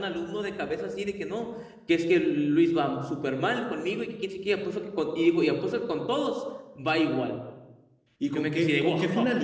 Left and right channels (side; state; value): both; identical; correlation 1.00